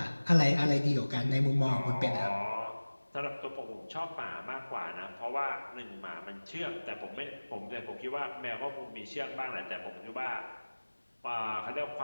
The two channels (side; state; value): both; inverted; correlation -1.00